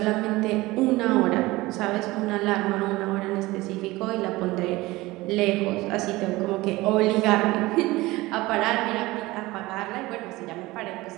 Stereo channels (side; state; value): left; quieter; 20.0 dB